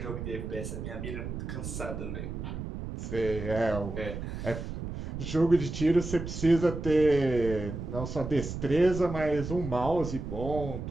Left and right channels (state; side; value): noise; right; rumble, 6 dB below the sound